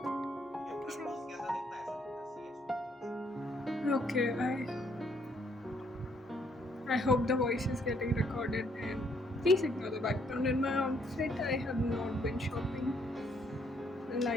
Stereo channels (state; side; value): normal; both; correlation 0.69